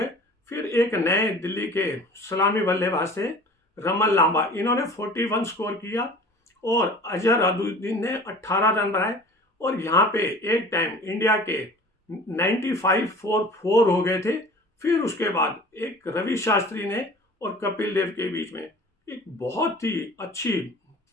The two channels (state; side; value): normal; both; correlation 0.43